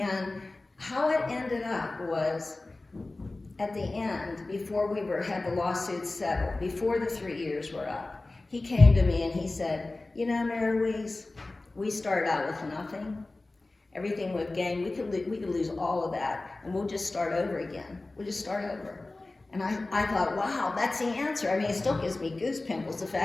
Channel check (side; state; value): right; quieter; 3.1 dB